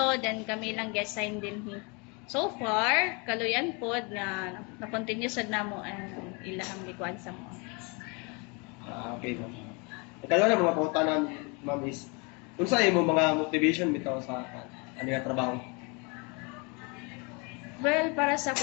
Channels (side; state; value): right; quieter; 31.1 dB